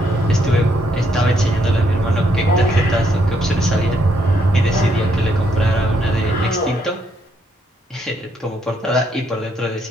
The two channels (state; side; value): normal; both; correlation 0.74